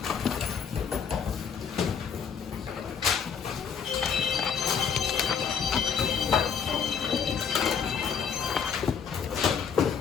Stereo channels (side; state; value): right; quieter; 6.8 dB